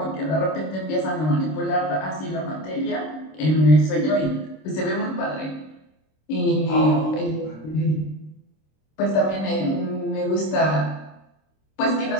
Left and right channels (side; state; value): right; late; 26 ms